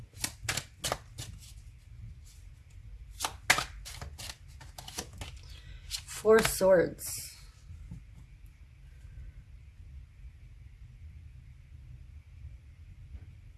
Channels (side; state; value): both; identical; correlation 1.00